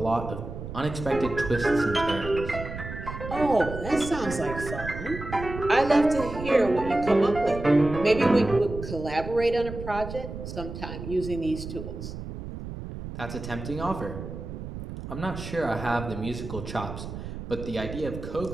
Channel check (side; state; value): right; noise; rumble, 9 dB below the sound